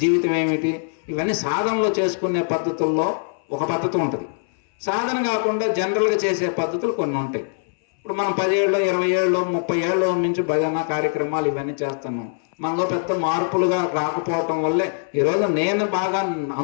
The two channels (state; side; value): silent; right; 61 dB below the other